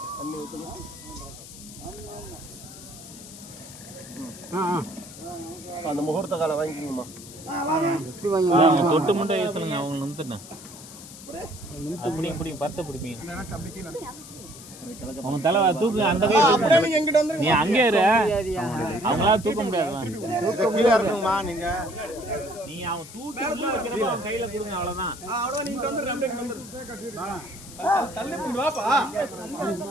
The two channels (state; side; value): noise; left; hiss, 16 dB below the sound